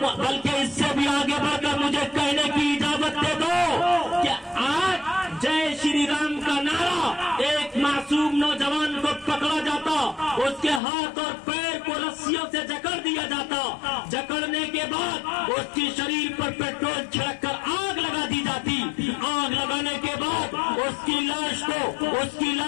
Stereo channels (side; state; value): right; drops out; at 10.8 s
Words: بلکہ اس سے بھی آگے بڑھ کر مجھے کہنے کی اجازت دے دو کہ آج جے شری رام کا نعرہ ایک معصوم نوجوان کو پکڑا جاتا, اس کے ہاتھ اور پیر کو رسیوں سے جکڑ دیا جاتا, جکڑنے کے بعد اس کی شریر پر پیٹرول چھڑک کر آگ لگا دی جاتی, آگ لگانے کے بعد اس کی لاش